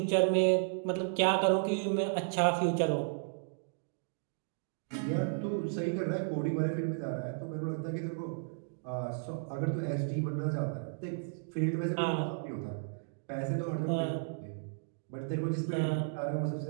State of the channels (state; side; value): silent; left; digital silence